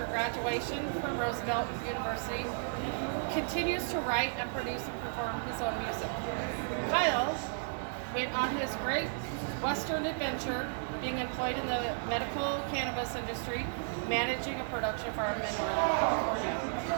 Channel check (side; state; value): left; silent; digital silence